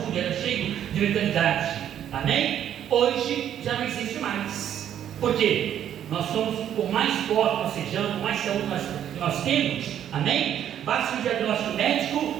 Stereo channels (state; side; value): quieter; left; 10.2 dB